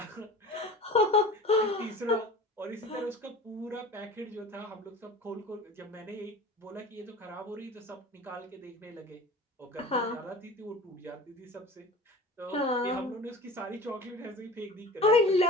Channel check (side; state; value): both; normal; correlation 0.38